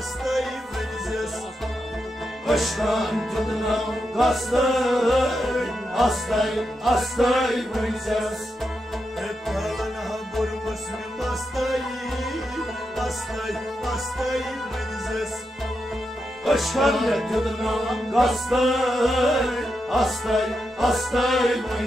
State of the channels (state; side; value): normal; both; correlation 0.86